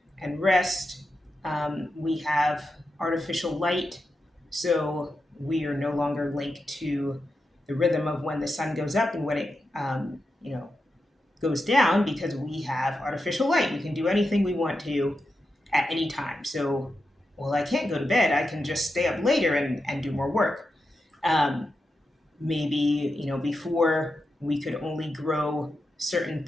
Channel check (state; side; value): normal; both; correlation 0.88